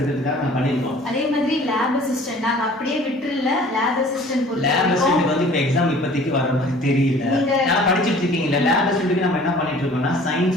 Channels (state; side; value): normal; both; correlation 0.49